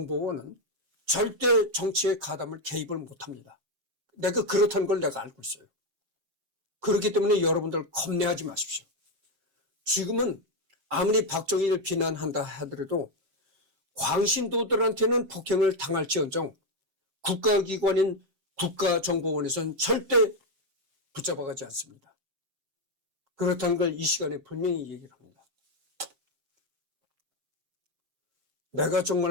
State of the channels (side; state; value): left; late; 7.5 ms